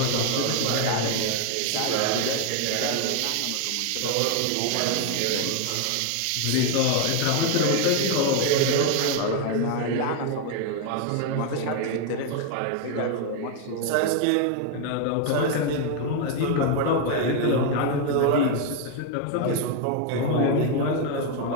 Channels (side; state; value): both; different; correlation 0.01